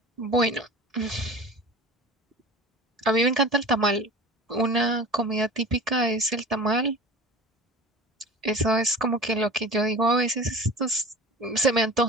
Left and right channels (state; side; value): normal; both; correlation 0.37